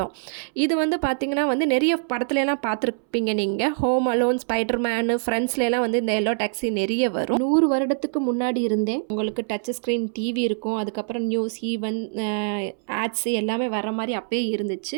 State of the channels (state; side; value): silent; left; 63 dB below the other